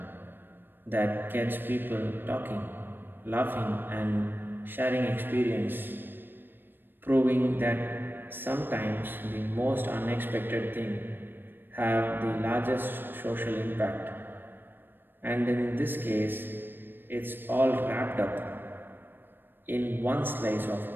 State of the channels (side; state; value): left; late; 0.096 ms